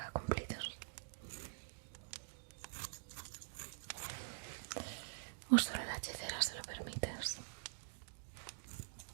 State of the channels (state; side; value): silent; left; digital silence